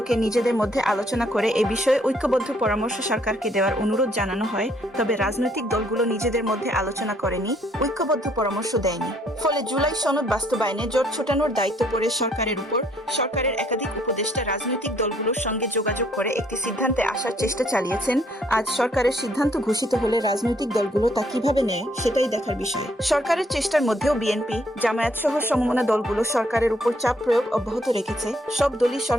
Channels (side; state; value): both; normal; correlation 0.67